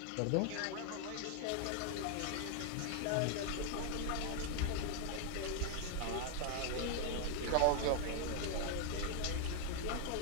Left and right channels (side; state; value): both; different; correlation 0.00